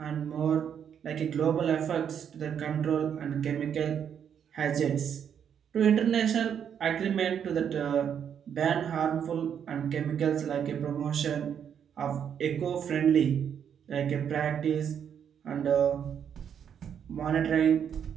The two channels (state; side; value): quieter; left; 8.3 dB